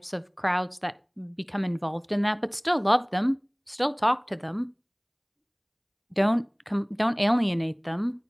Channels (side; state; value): both; identical; correlation 1.00